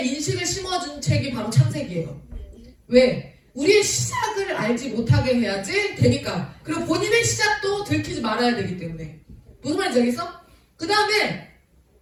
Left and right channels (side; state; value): both; identical; correlation 1.00